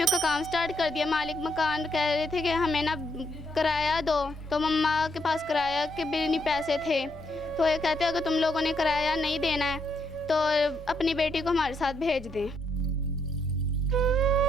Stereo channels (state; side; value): normal; both; correlation 0.76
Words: का काम स्टार्ट कर दिया। मालिक मकान कह रहे थे कि हमें ना किराया दो, तो मम्मा के पास किराया के भी नहीं पैसे थे। तो ये कहते अगर तुम लोगों ने किराया नहीं देना है तो अपनी बेटी को हमारे साथ भेज दें।